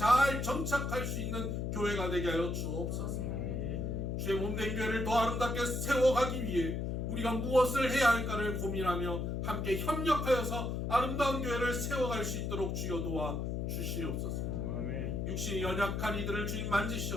정착할 수 있는 교회가 되게 하여 주옵소서. 주의 몸된 교회를 더 아름답게 세워가기 위해 우리가 무엇을 해야 할까를 고민하며 함께 협력하여서 아름다운 교회를 세워갈 수 있도록 주여 도와 주시옵소서. 육신이 연약한 이들을 주님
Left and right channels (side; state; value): left; noise; hum, 1 dB below the sound